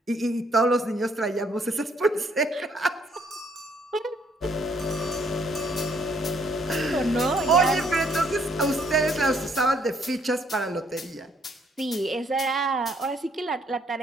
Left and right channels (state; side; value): normal; both; correlation 0.67